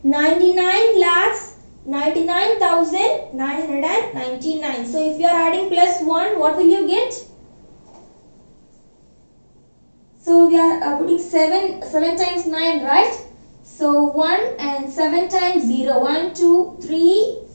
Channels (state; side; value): inverted; both; correlation -1.00